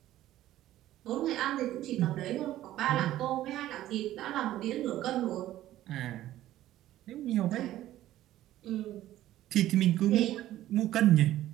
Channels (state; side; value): quieter; left; 13.9 dB